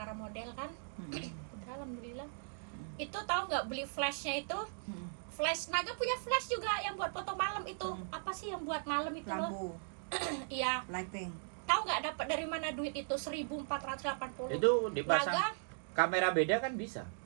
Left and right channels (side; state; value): left; silent; digital silence